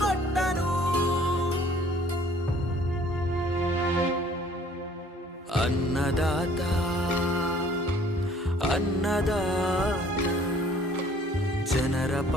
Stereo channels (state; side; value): normal; both; correlation 0.56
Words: ಅನ್ನದಾತ ಅನ್ನದಾತ ಜನರ